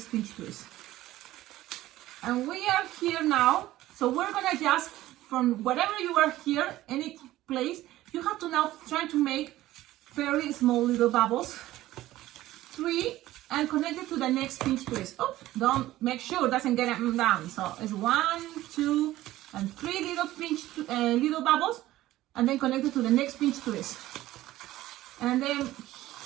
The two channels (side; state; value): left; quieter; 15.6 dB